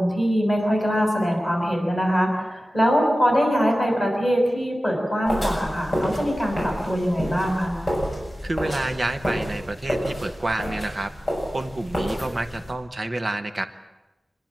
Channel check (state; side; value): normal; both; correlation 0.95